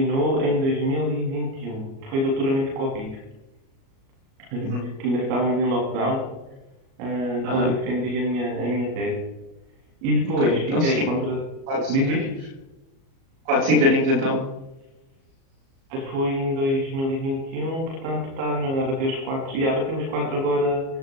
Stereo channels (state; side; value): late; left; 37 ms